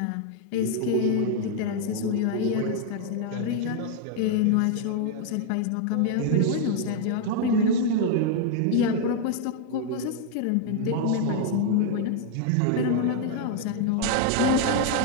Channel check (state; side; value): different; both; correlation 0.00